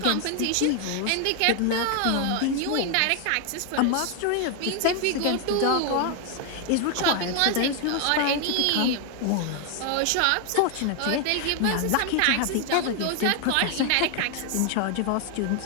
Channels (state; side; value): different; both; correlation 0.00